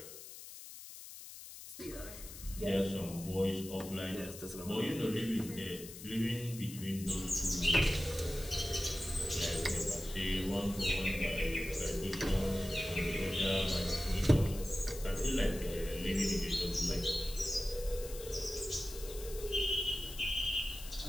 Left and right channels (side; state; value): left; noise; hiss, 13 dB below the sound